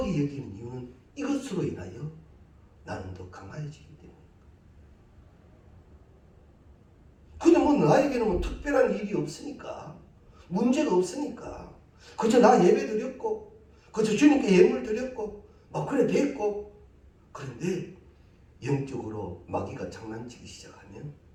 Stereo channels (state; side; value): identical; both; correlation 1.00